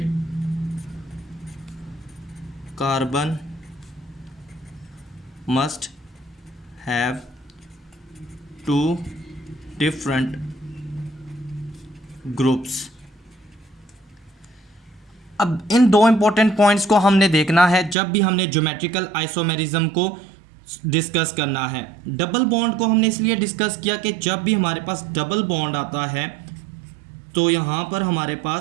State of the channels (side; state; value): left; drops out; at 17.9 s